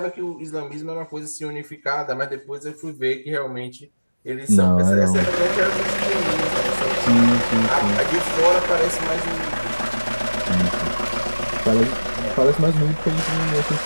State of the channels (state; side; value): inverted; both; correlation -1.00